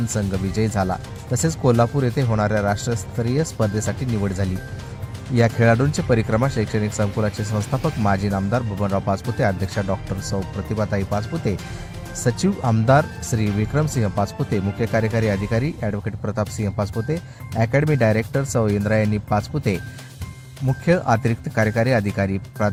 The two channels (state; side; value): identical; both; correlation 1.00